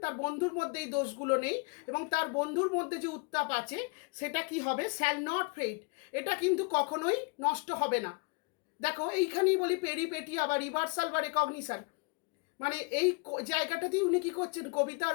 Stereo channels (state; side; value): quieter; right; 30.4 dB